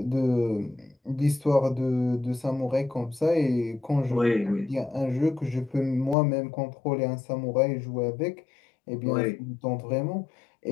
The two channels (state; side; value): drops out; right; at 6.2 s